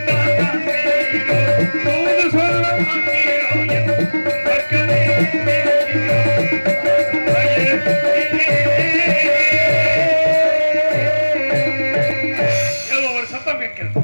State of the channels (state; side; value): inverted; both; correlation -1.00